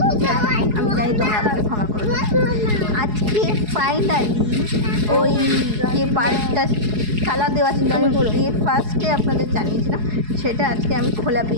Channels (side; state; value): left; late; 4.7 ms